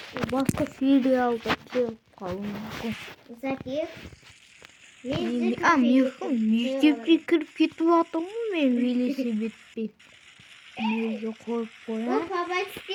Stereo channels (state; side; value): identical; both; correlation 1.00